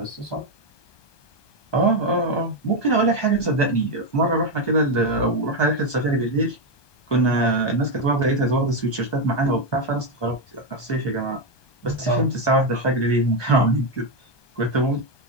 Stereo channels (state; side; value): late; right; 1.2 ms